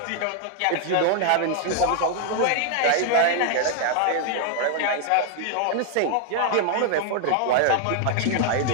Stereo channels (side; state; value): both; different; correlation 0.00